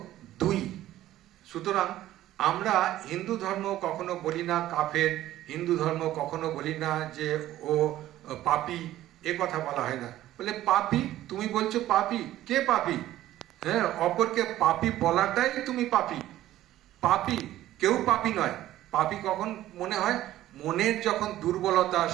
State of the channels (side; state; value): left; quieter; 14.1 dB